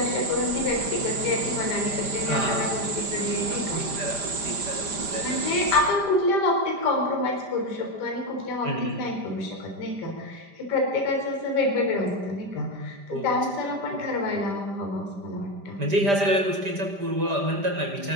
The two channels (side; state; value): left; late; 5.0 ms